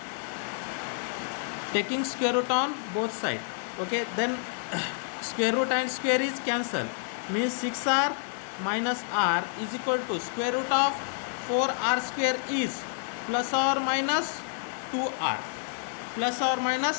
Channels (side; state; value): right; silent; digital silence